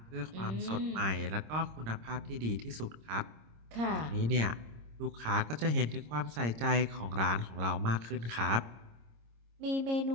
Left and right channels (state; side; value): late; left; 26 ms